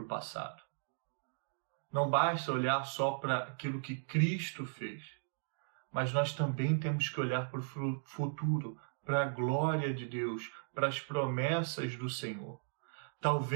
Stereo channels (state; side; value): silent; left; digital silence